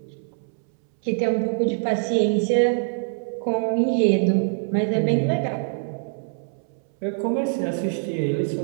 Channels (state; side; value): silent; left; 63 dB below the other